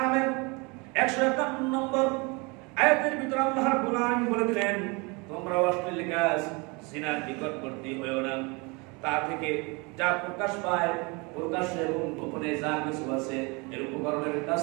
151 নম্বর আয়াতের ভিতরে আল্লাহ রাব্বুল আলামিন বলে দিলেন তোমরা অশ্লীল কাজ জিনার নিকটবর্তী হয়ো না। তা থেকে যা প্রকাশ পায় প্রকাশ্যে এবং গোপনে যা কিছু আছে এর উপকরণের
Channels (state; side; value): quieter; left; 28.6 dB